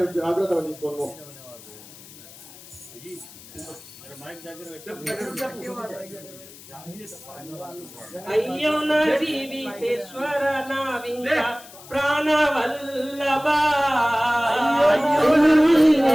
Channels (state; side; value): noise; left; hiss, 19 dB below the sound